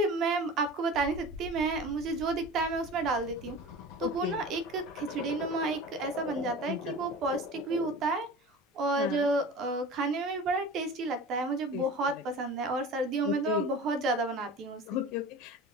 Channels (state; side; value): normal; both; correlation 0.36